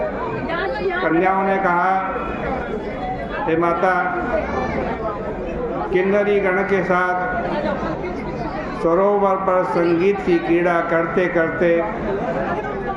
कन्याओं ने कहा, हे माता, किन्नरी गण के साथ सरोवर पर संगीत की क्रीड़ा करते करते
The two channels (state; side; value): identical; both; correlation 1.00